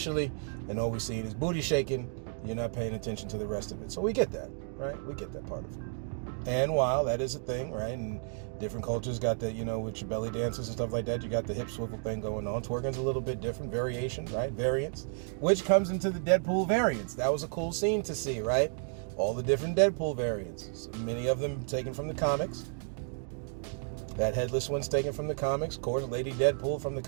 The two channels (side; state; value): left; silent; 56 dB below the other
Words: and all we're seeing is booty shaking, you're not paying attention to the rest of it. So we get that, right? We get that part of it. And while that is a thing, right, and different cultures got that, with your belly dances and stuff like that, you got the hip swivel thing going on. Twerking's a little bit different, variation, right, variance, which comes into the Deadpool variants. That was a cool scene to see, right? All the different Deadpool variants, many of them taken from the comics. That headless one's taken from the comics. Of course, Lady Deadpool from the